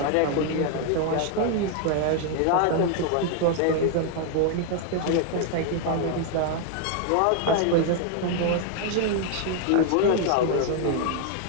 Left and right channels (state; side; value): different; both; correlation 0.00